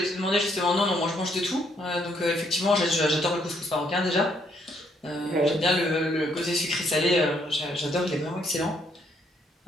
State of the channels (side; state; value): both; normal; correlation 0.70